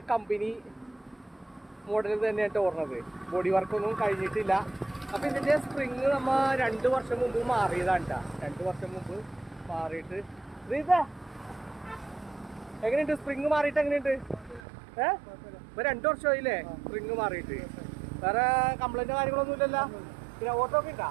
കമ്പനി മോഡൽ തന്നെയായിട്ട് ഓടുന്നത്. ബോഡി വർക്കൊന്നും കഴിഞ്ഞിട്ടില്ല. അപ്പം ഇതിൻ്റെ സ്പ്രിങ് നമ്മൾ 2 വർഷം മുമ്പ് മാറിയതാണ് കേട്ടോ. 2 വർഷം മുമ്പ് മാറിയിട്ട് എങ്ങനെയുണ്ട് സ്പ്രിങ് മാറിയിട്ട്? എങ്ങനെയുണ്ട്? ഇപ്പൊ 2 വർഷമായില്ലേ സ്പ്രിങ് മാറിയിട്ട്? വേറെ കംപ്ലൈൻറ്റോ കാര്യങ്ങളൊന്നും ഇല്ലല്ലോ? പിന്നെ ഓട്ടോ ഒക്കെ ഉണ്ടോ?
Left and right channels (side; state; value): left; drops out; at 14.6 s